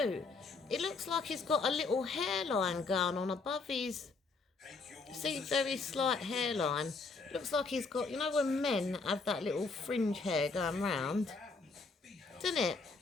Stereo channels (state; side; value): quieter; right; 4.2 dB